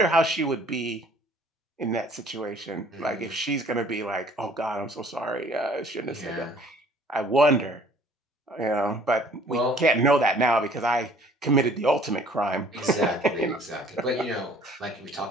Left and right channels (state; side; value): normal; both; correlation 0.55